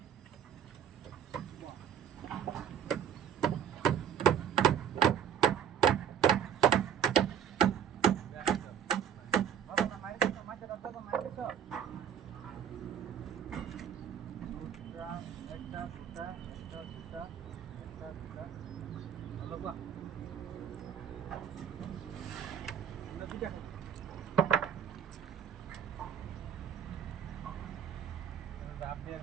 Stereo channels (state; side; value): quieter; left; 8.7 dB